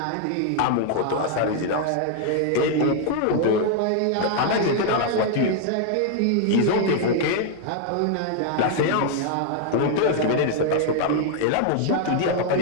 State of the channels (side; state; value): both; different; correlation 0.00